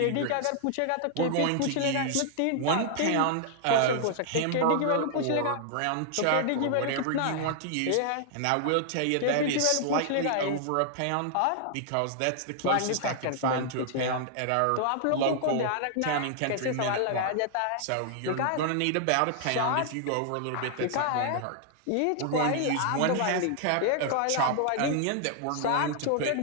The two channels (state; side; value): different; both; correlation 0.00